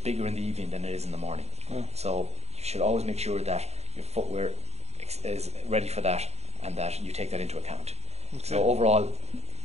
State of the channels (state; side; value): late; left; 0.31 ms